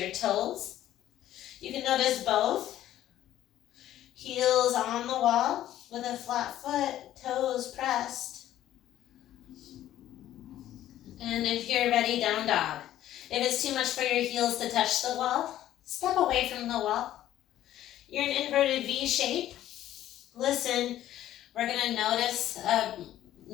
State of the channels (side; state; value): right; quieter; 12.8 dB